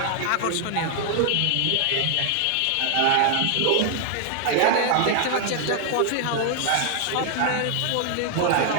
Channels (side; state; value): both; different; correlation 0.00